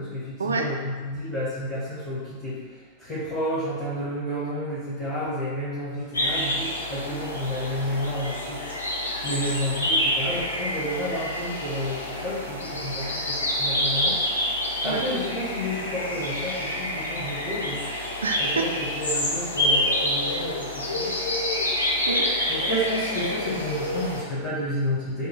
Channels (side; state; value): both; normal; correlation -0.19